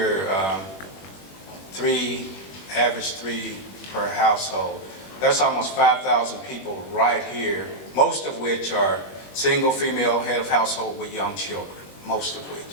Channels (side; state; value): right; late; 21 ms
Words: average three per household, that's almost 5,000 people right here, most of which are single female head of household with young children, most of